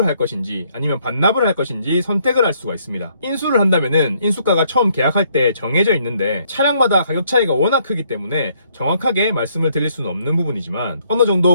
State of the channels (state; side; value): inverted; both; correlation -0.68